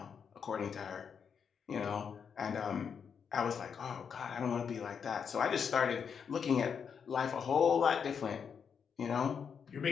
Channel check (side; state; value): right; quieter; 6.8 dB